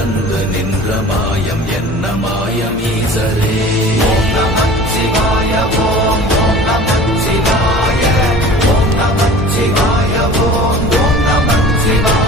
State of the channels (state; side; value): normal; both; correlation 0.42